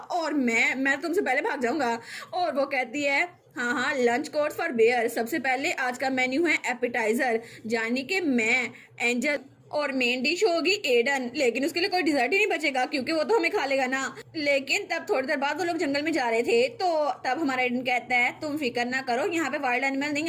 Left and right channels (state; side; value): identical; both; correlation 1.00